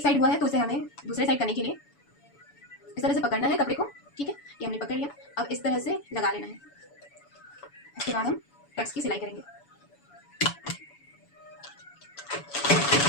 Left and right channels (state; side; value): late; right; 7.0 ms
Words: साइड हुआ है तो उसे हमें दूसरे साइड करने के लिए इस तरह से पकड़ना है कपड़े को। ठीक है, ये हमने पकड़ लिया। अब इस तरह से लगा लेना है। इसके बाद हम टक्स की सिलाई करेंगे।